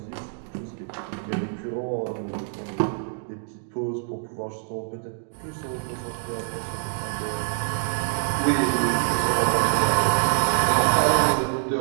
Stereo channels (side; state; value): left; silent; digital silence